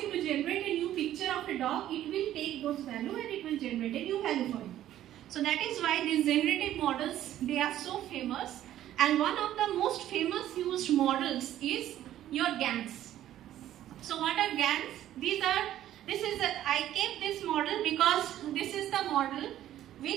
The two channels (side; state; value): left; quieter; 12.5 dB